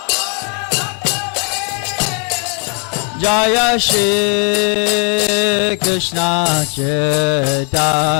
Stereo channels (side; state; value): right; quieter; 36.3 dB